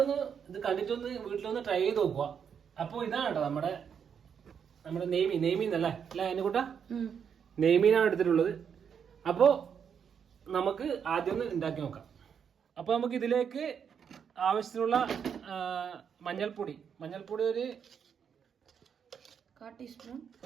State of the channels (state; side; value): quieter; left; 7.4 dB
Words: ഒന്ന് ഇത് കണ്ടിട്ടൊന്ന് വീട്ടിലൊന്ന് ട്രൈ ചെയ്ത് നോക്കുക. അപ്പോൾ ഇതാണ് കേട്ടോ നമ്മുടെ നെയ്മീൻ അല്ലേ അതിനെക്കൂട്ടാ നെയ്മീനാണ് എടുത്തിട്ടുള്ളത്. അപ്പോൾ നമുക്ക് ആദ്യം ഒന്ന് ഉണ്ടാക്കി നോക്കാം. അപ്പോൾ നമുക്ക് ഇതിലേക്ക് ആവശ്യത്തിനുള്ള മഞ്ഞൾപ്പൊടി ഒരു